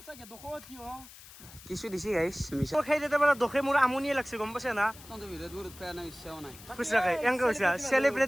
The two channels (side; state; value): left; noise; hiss, 19 dB below the sound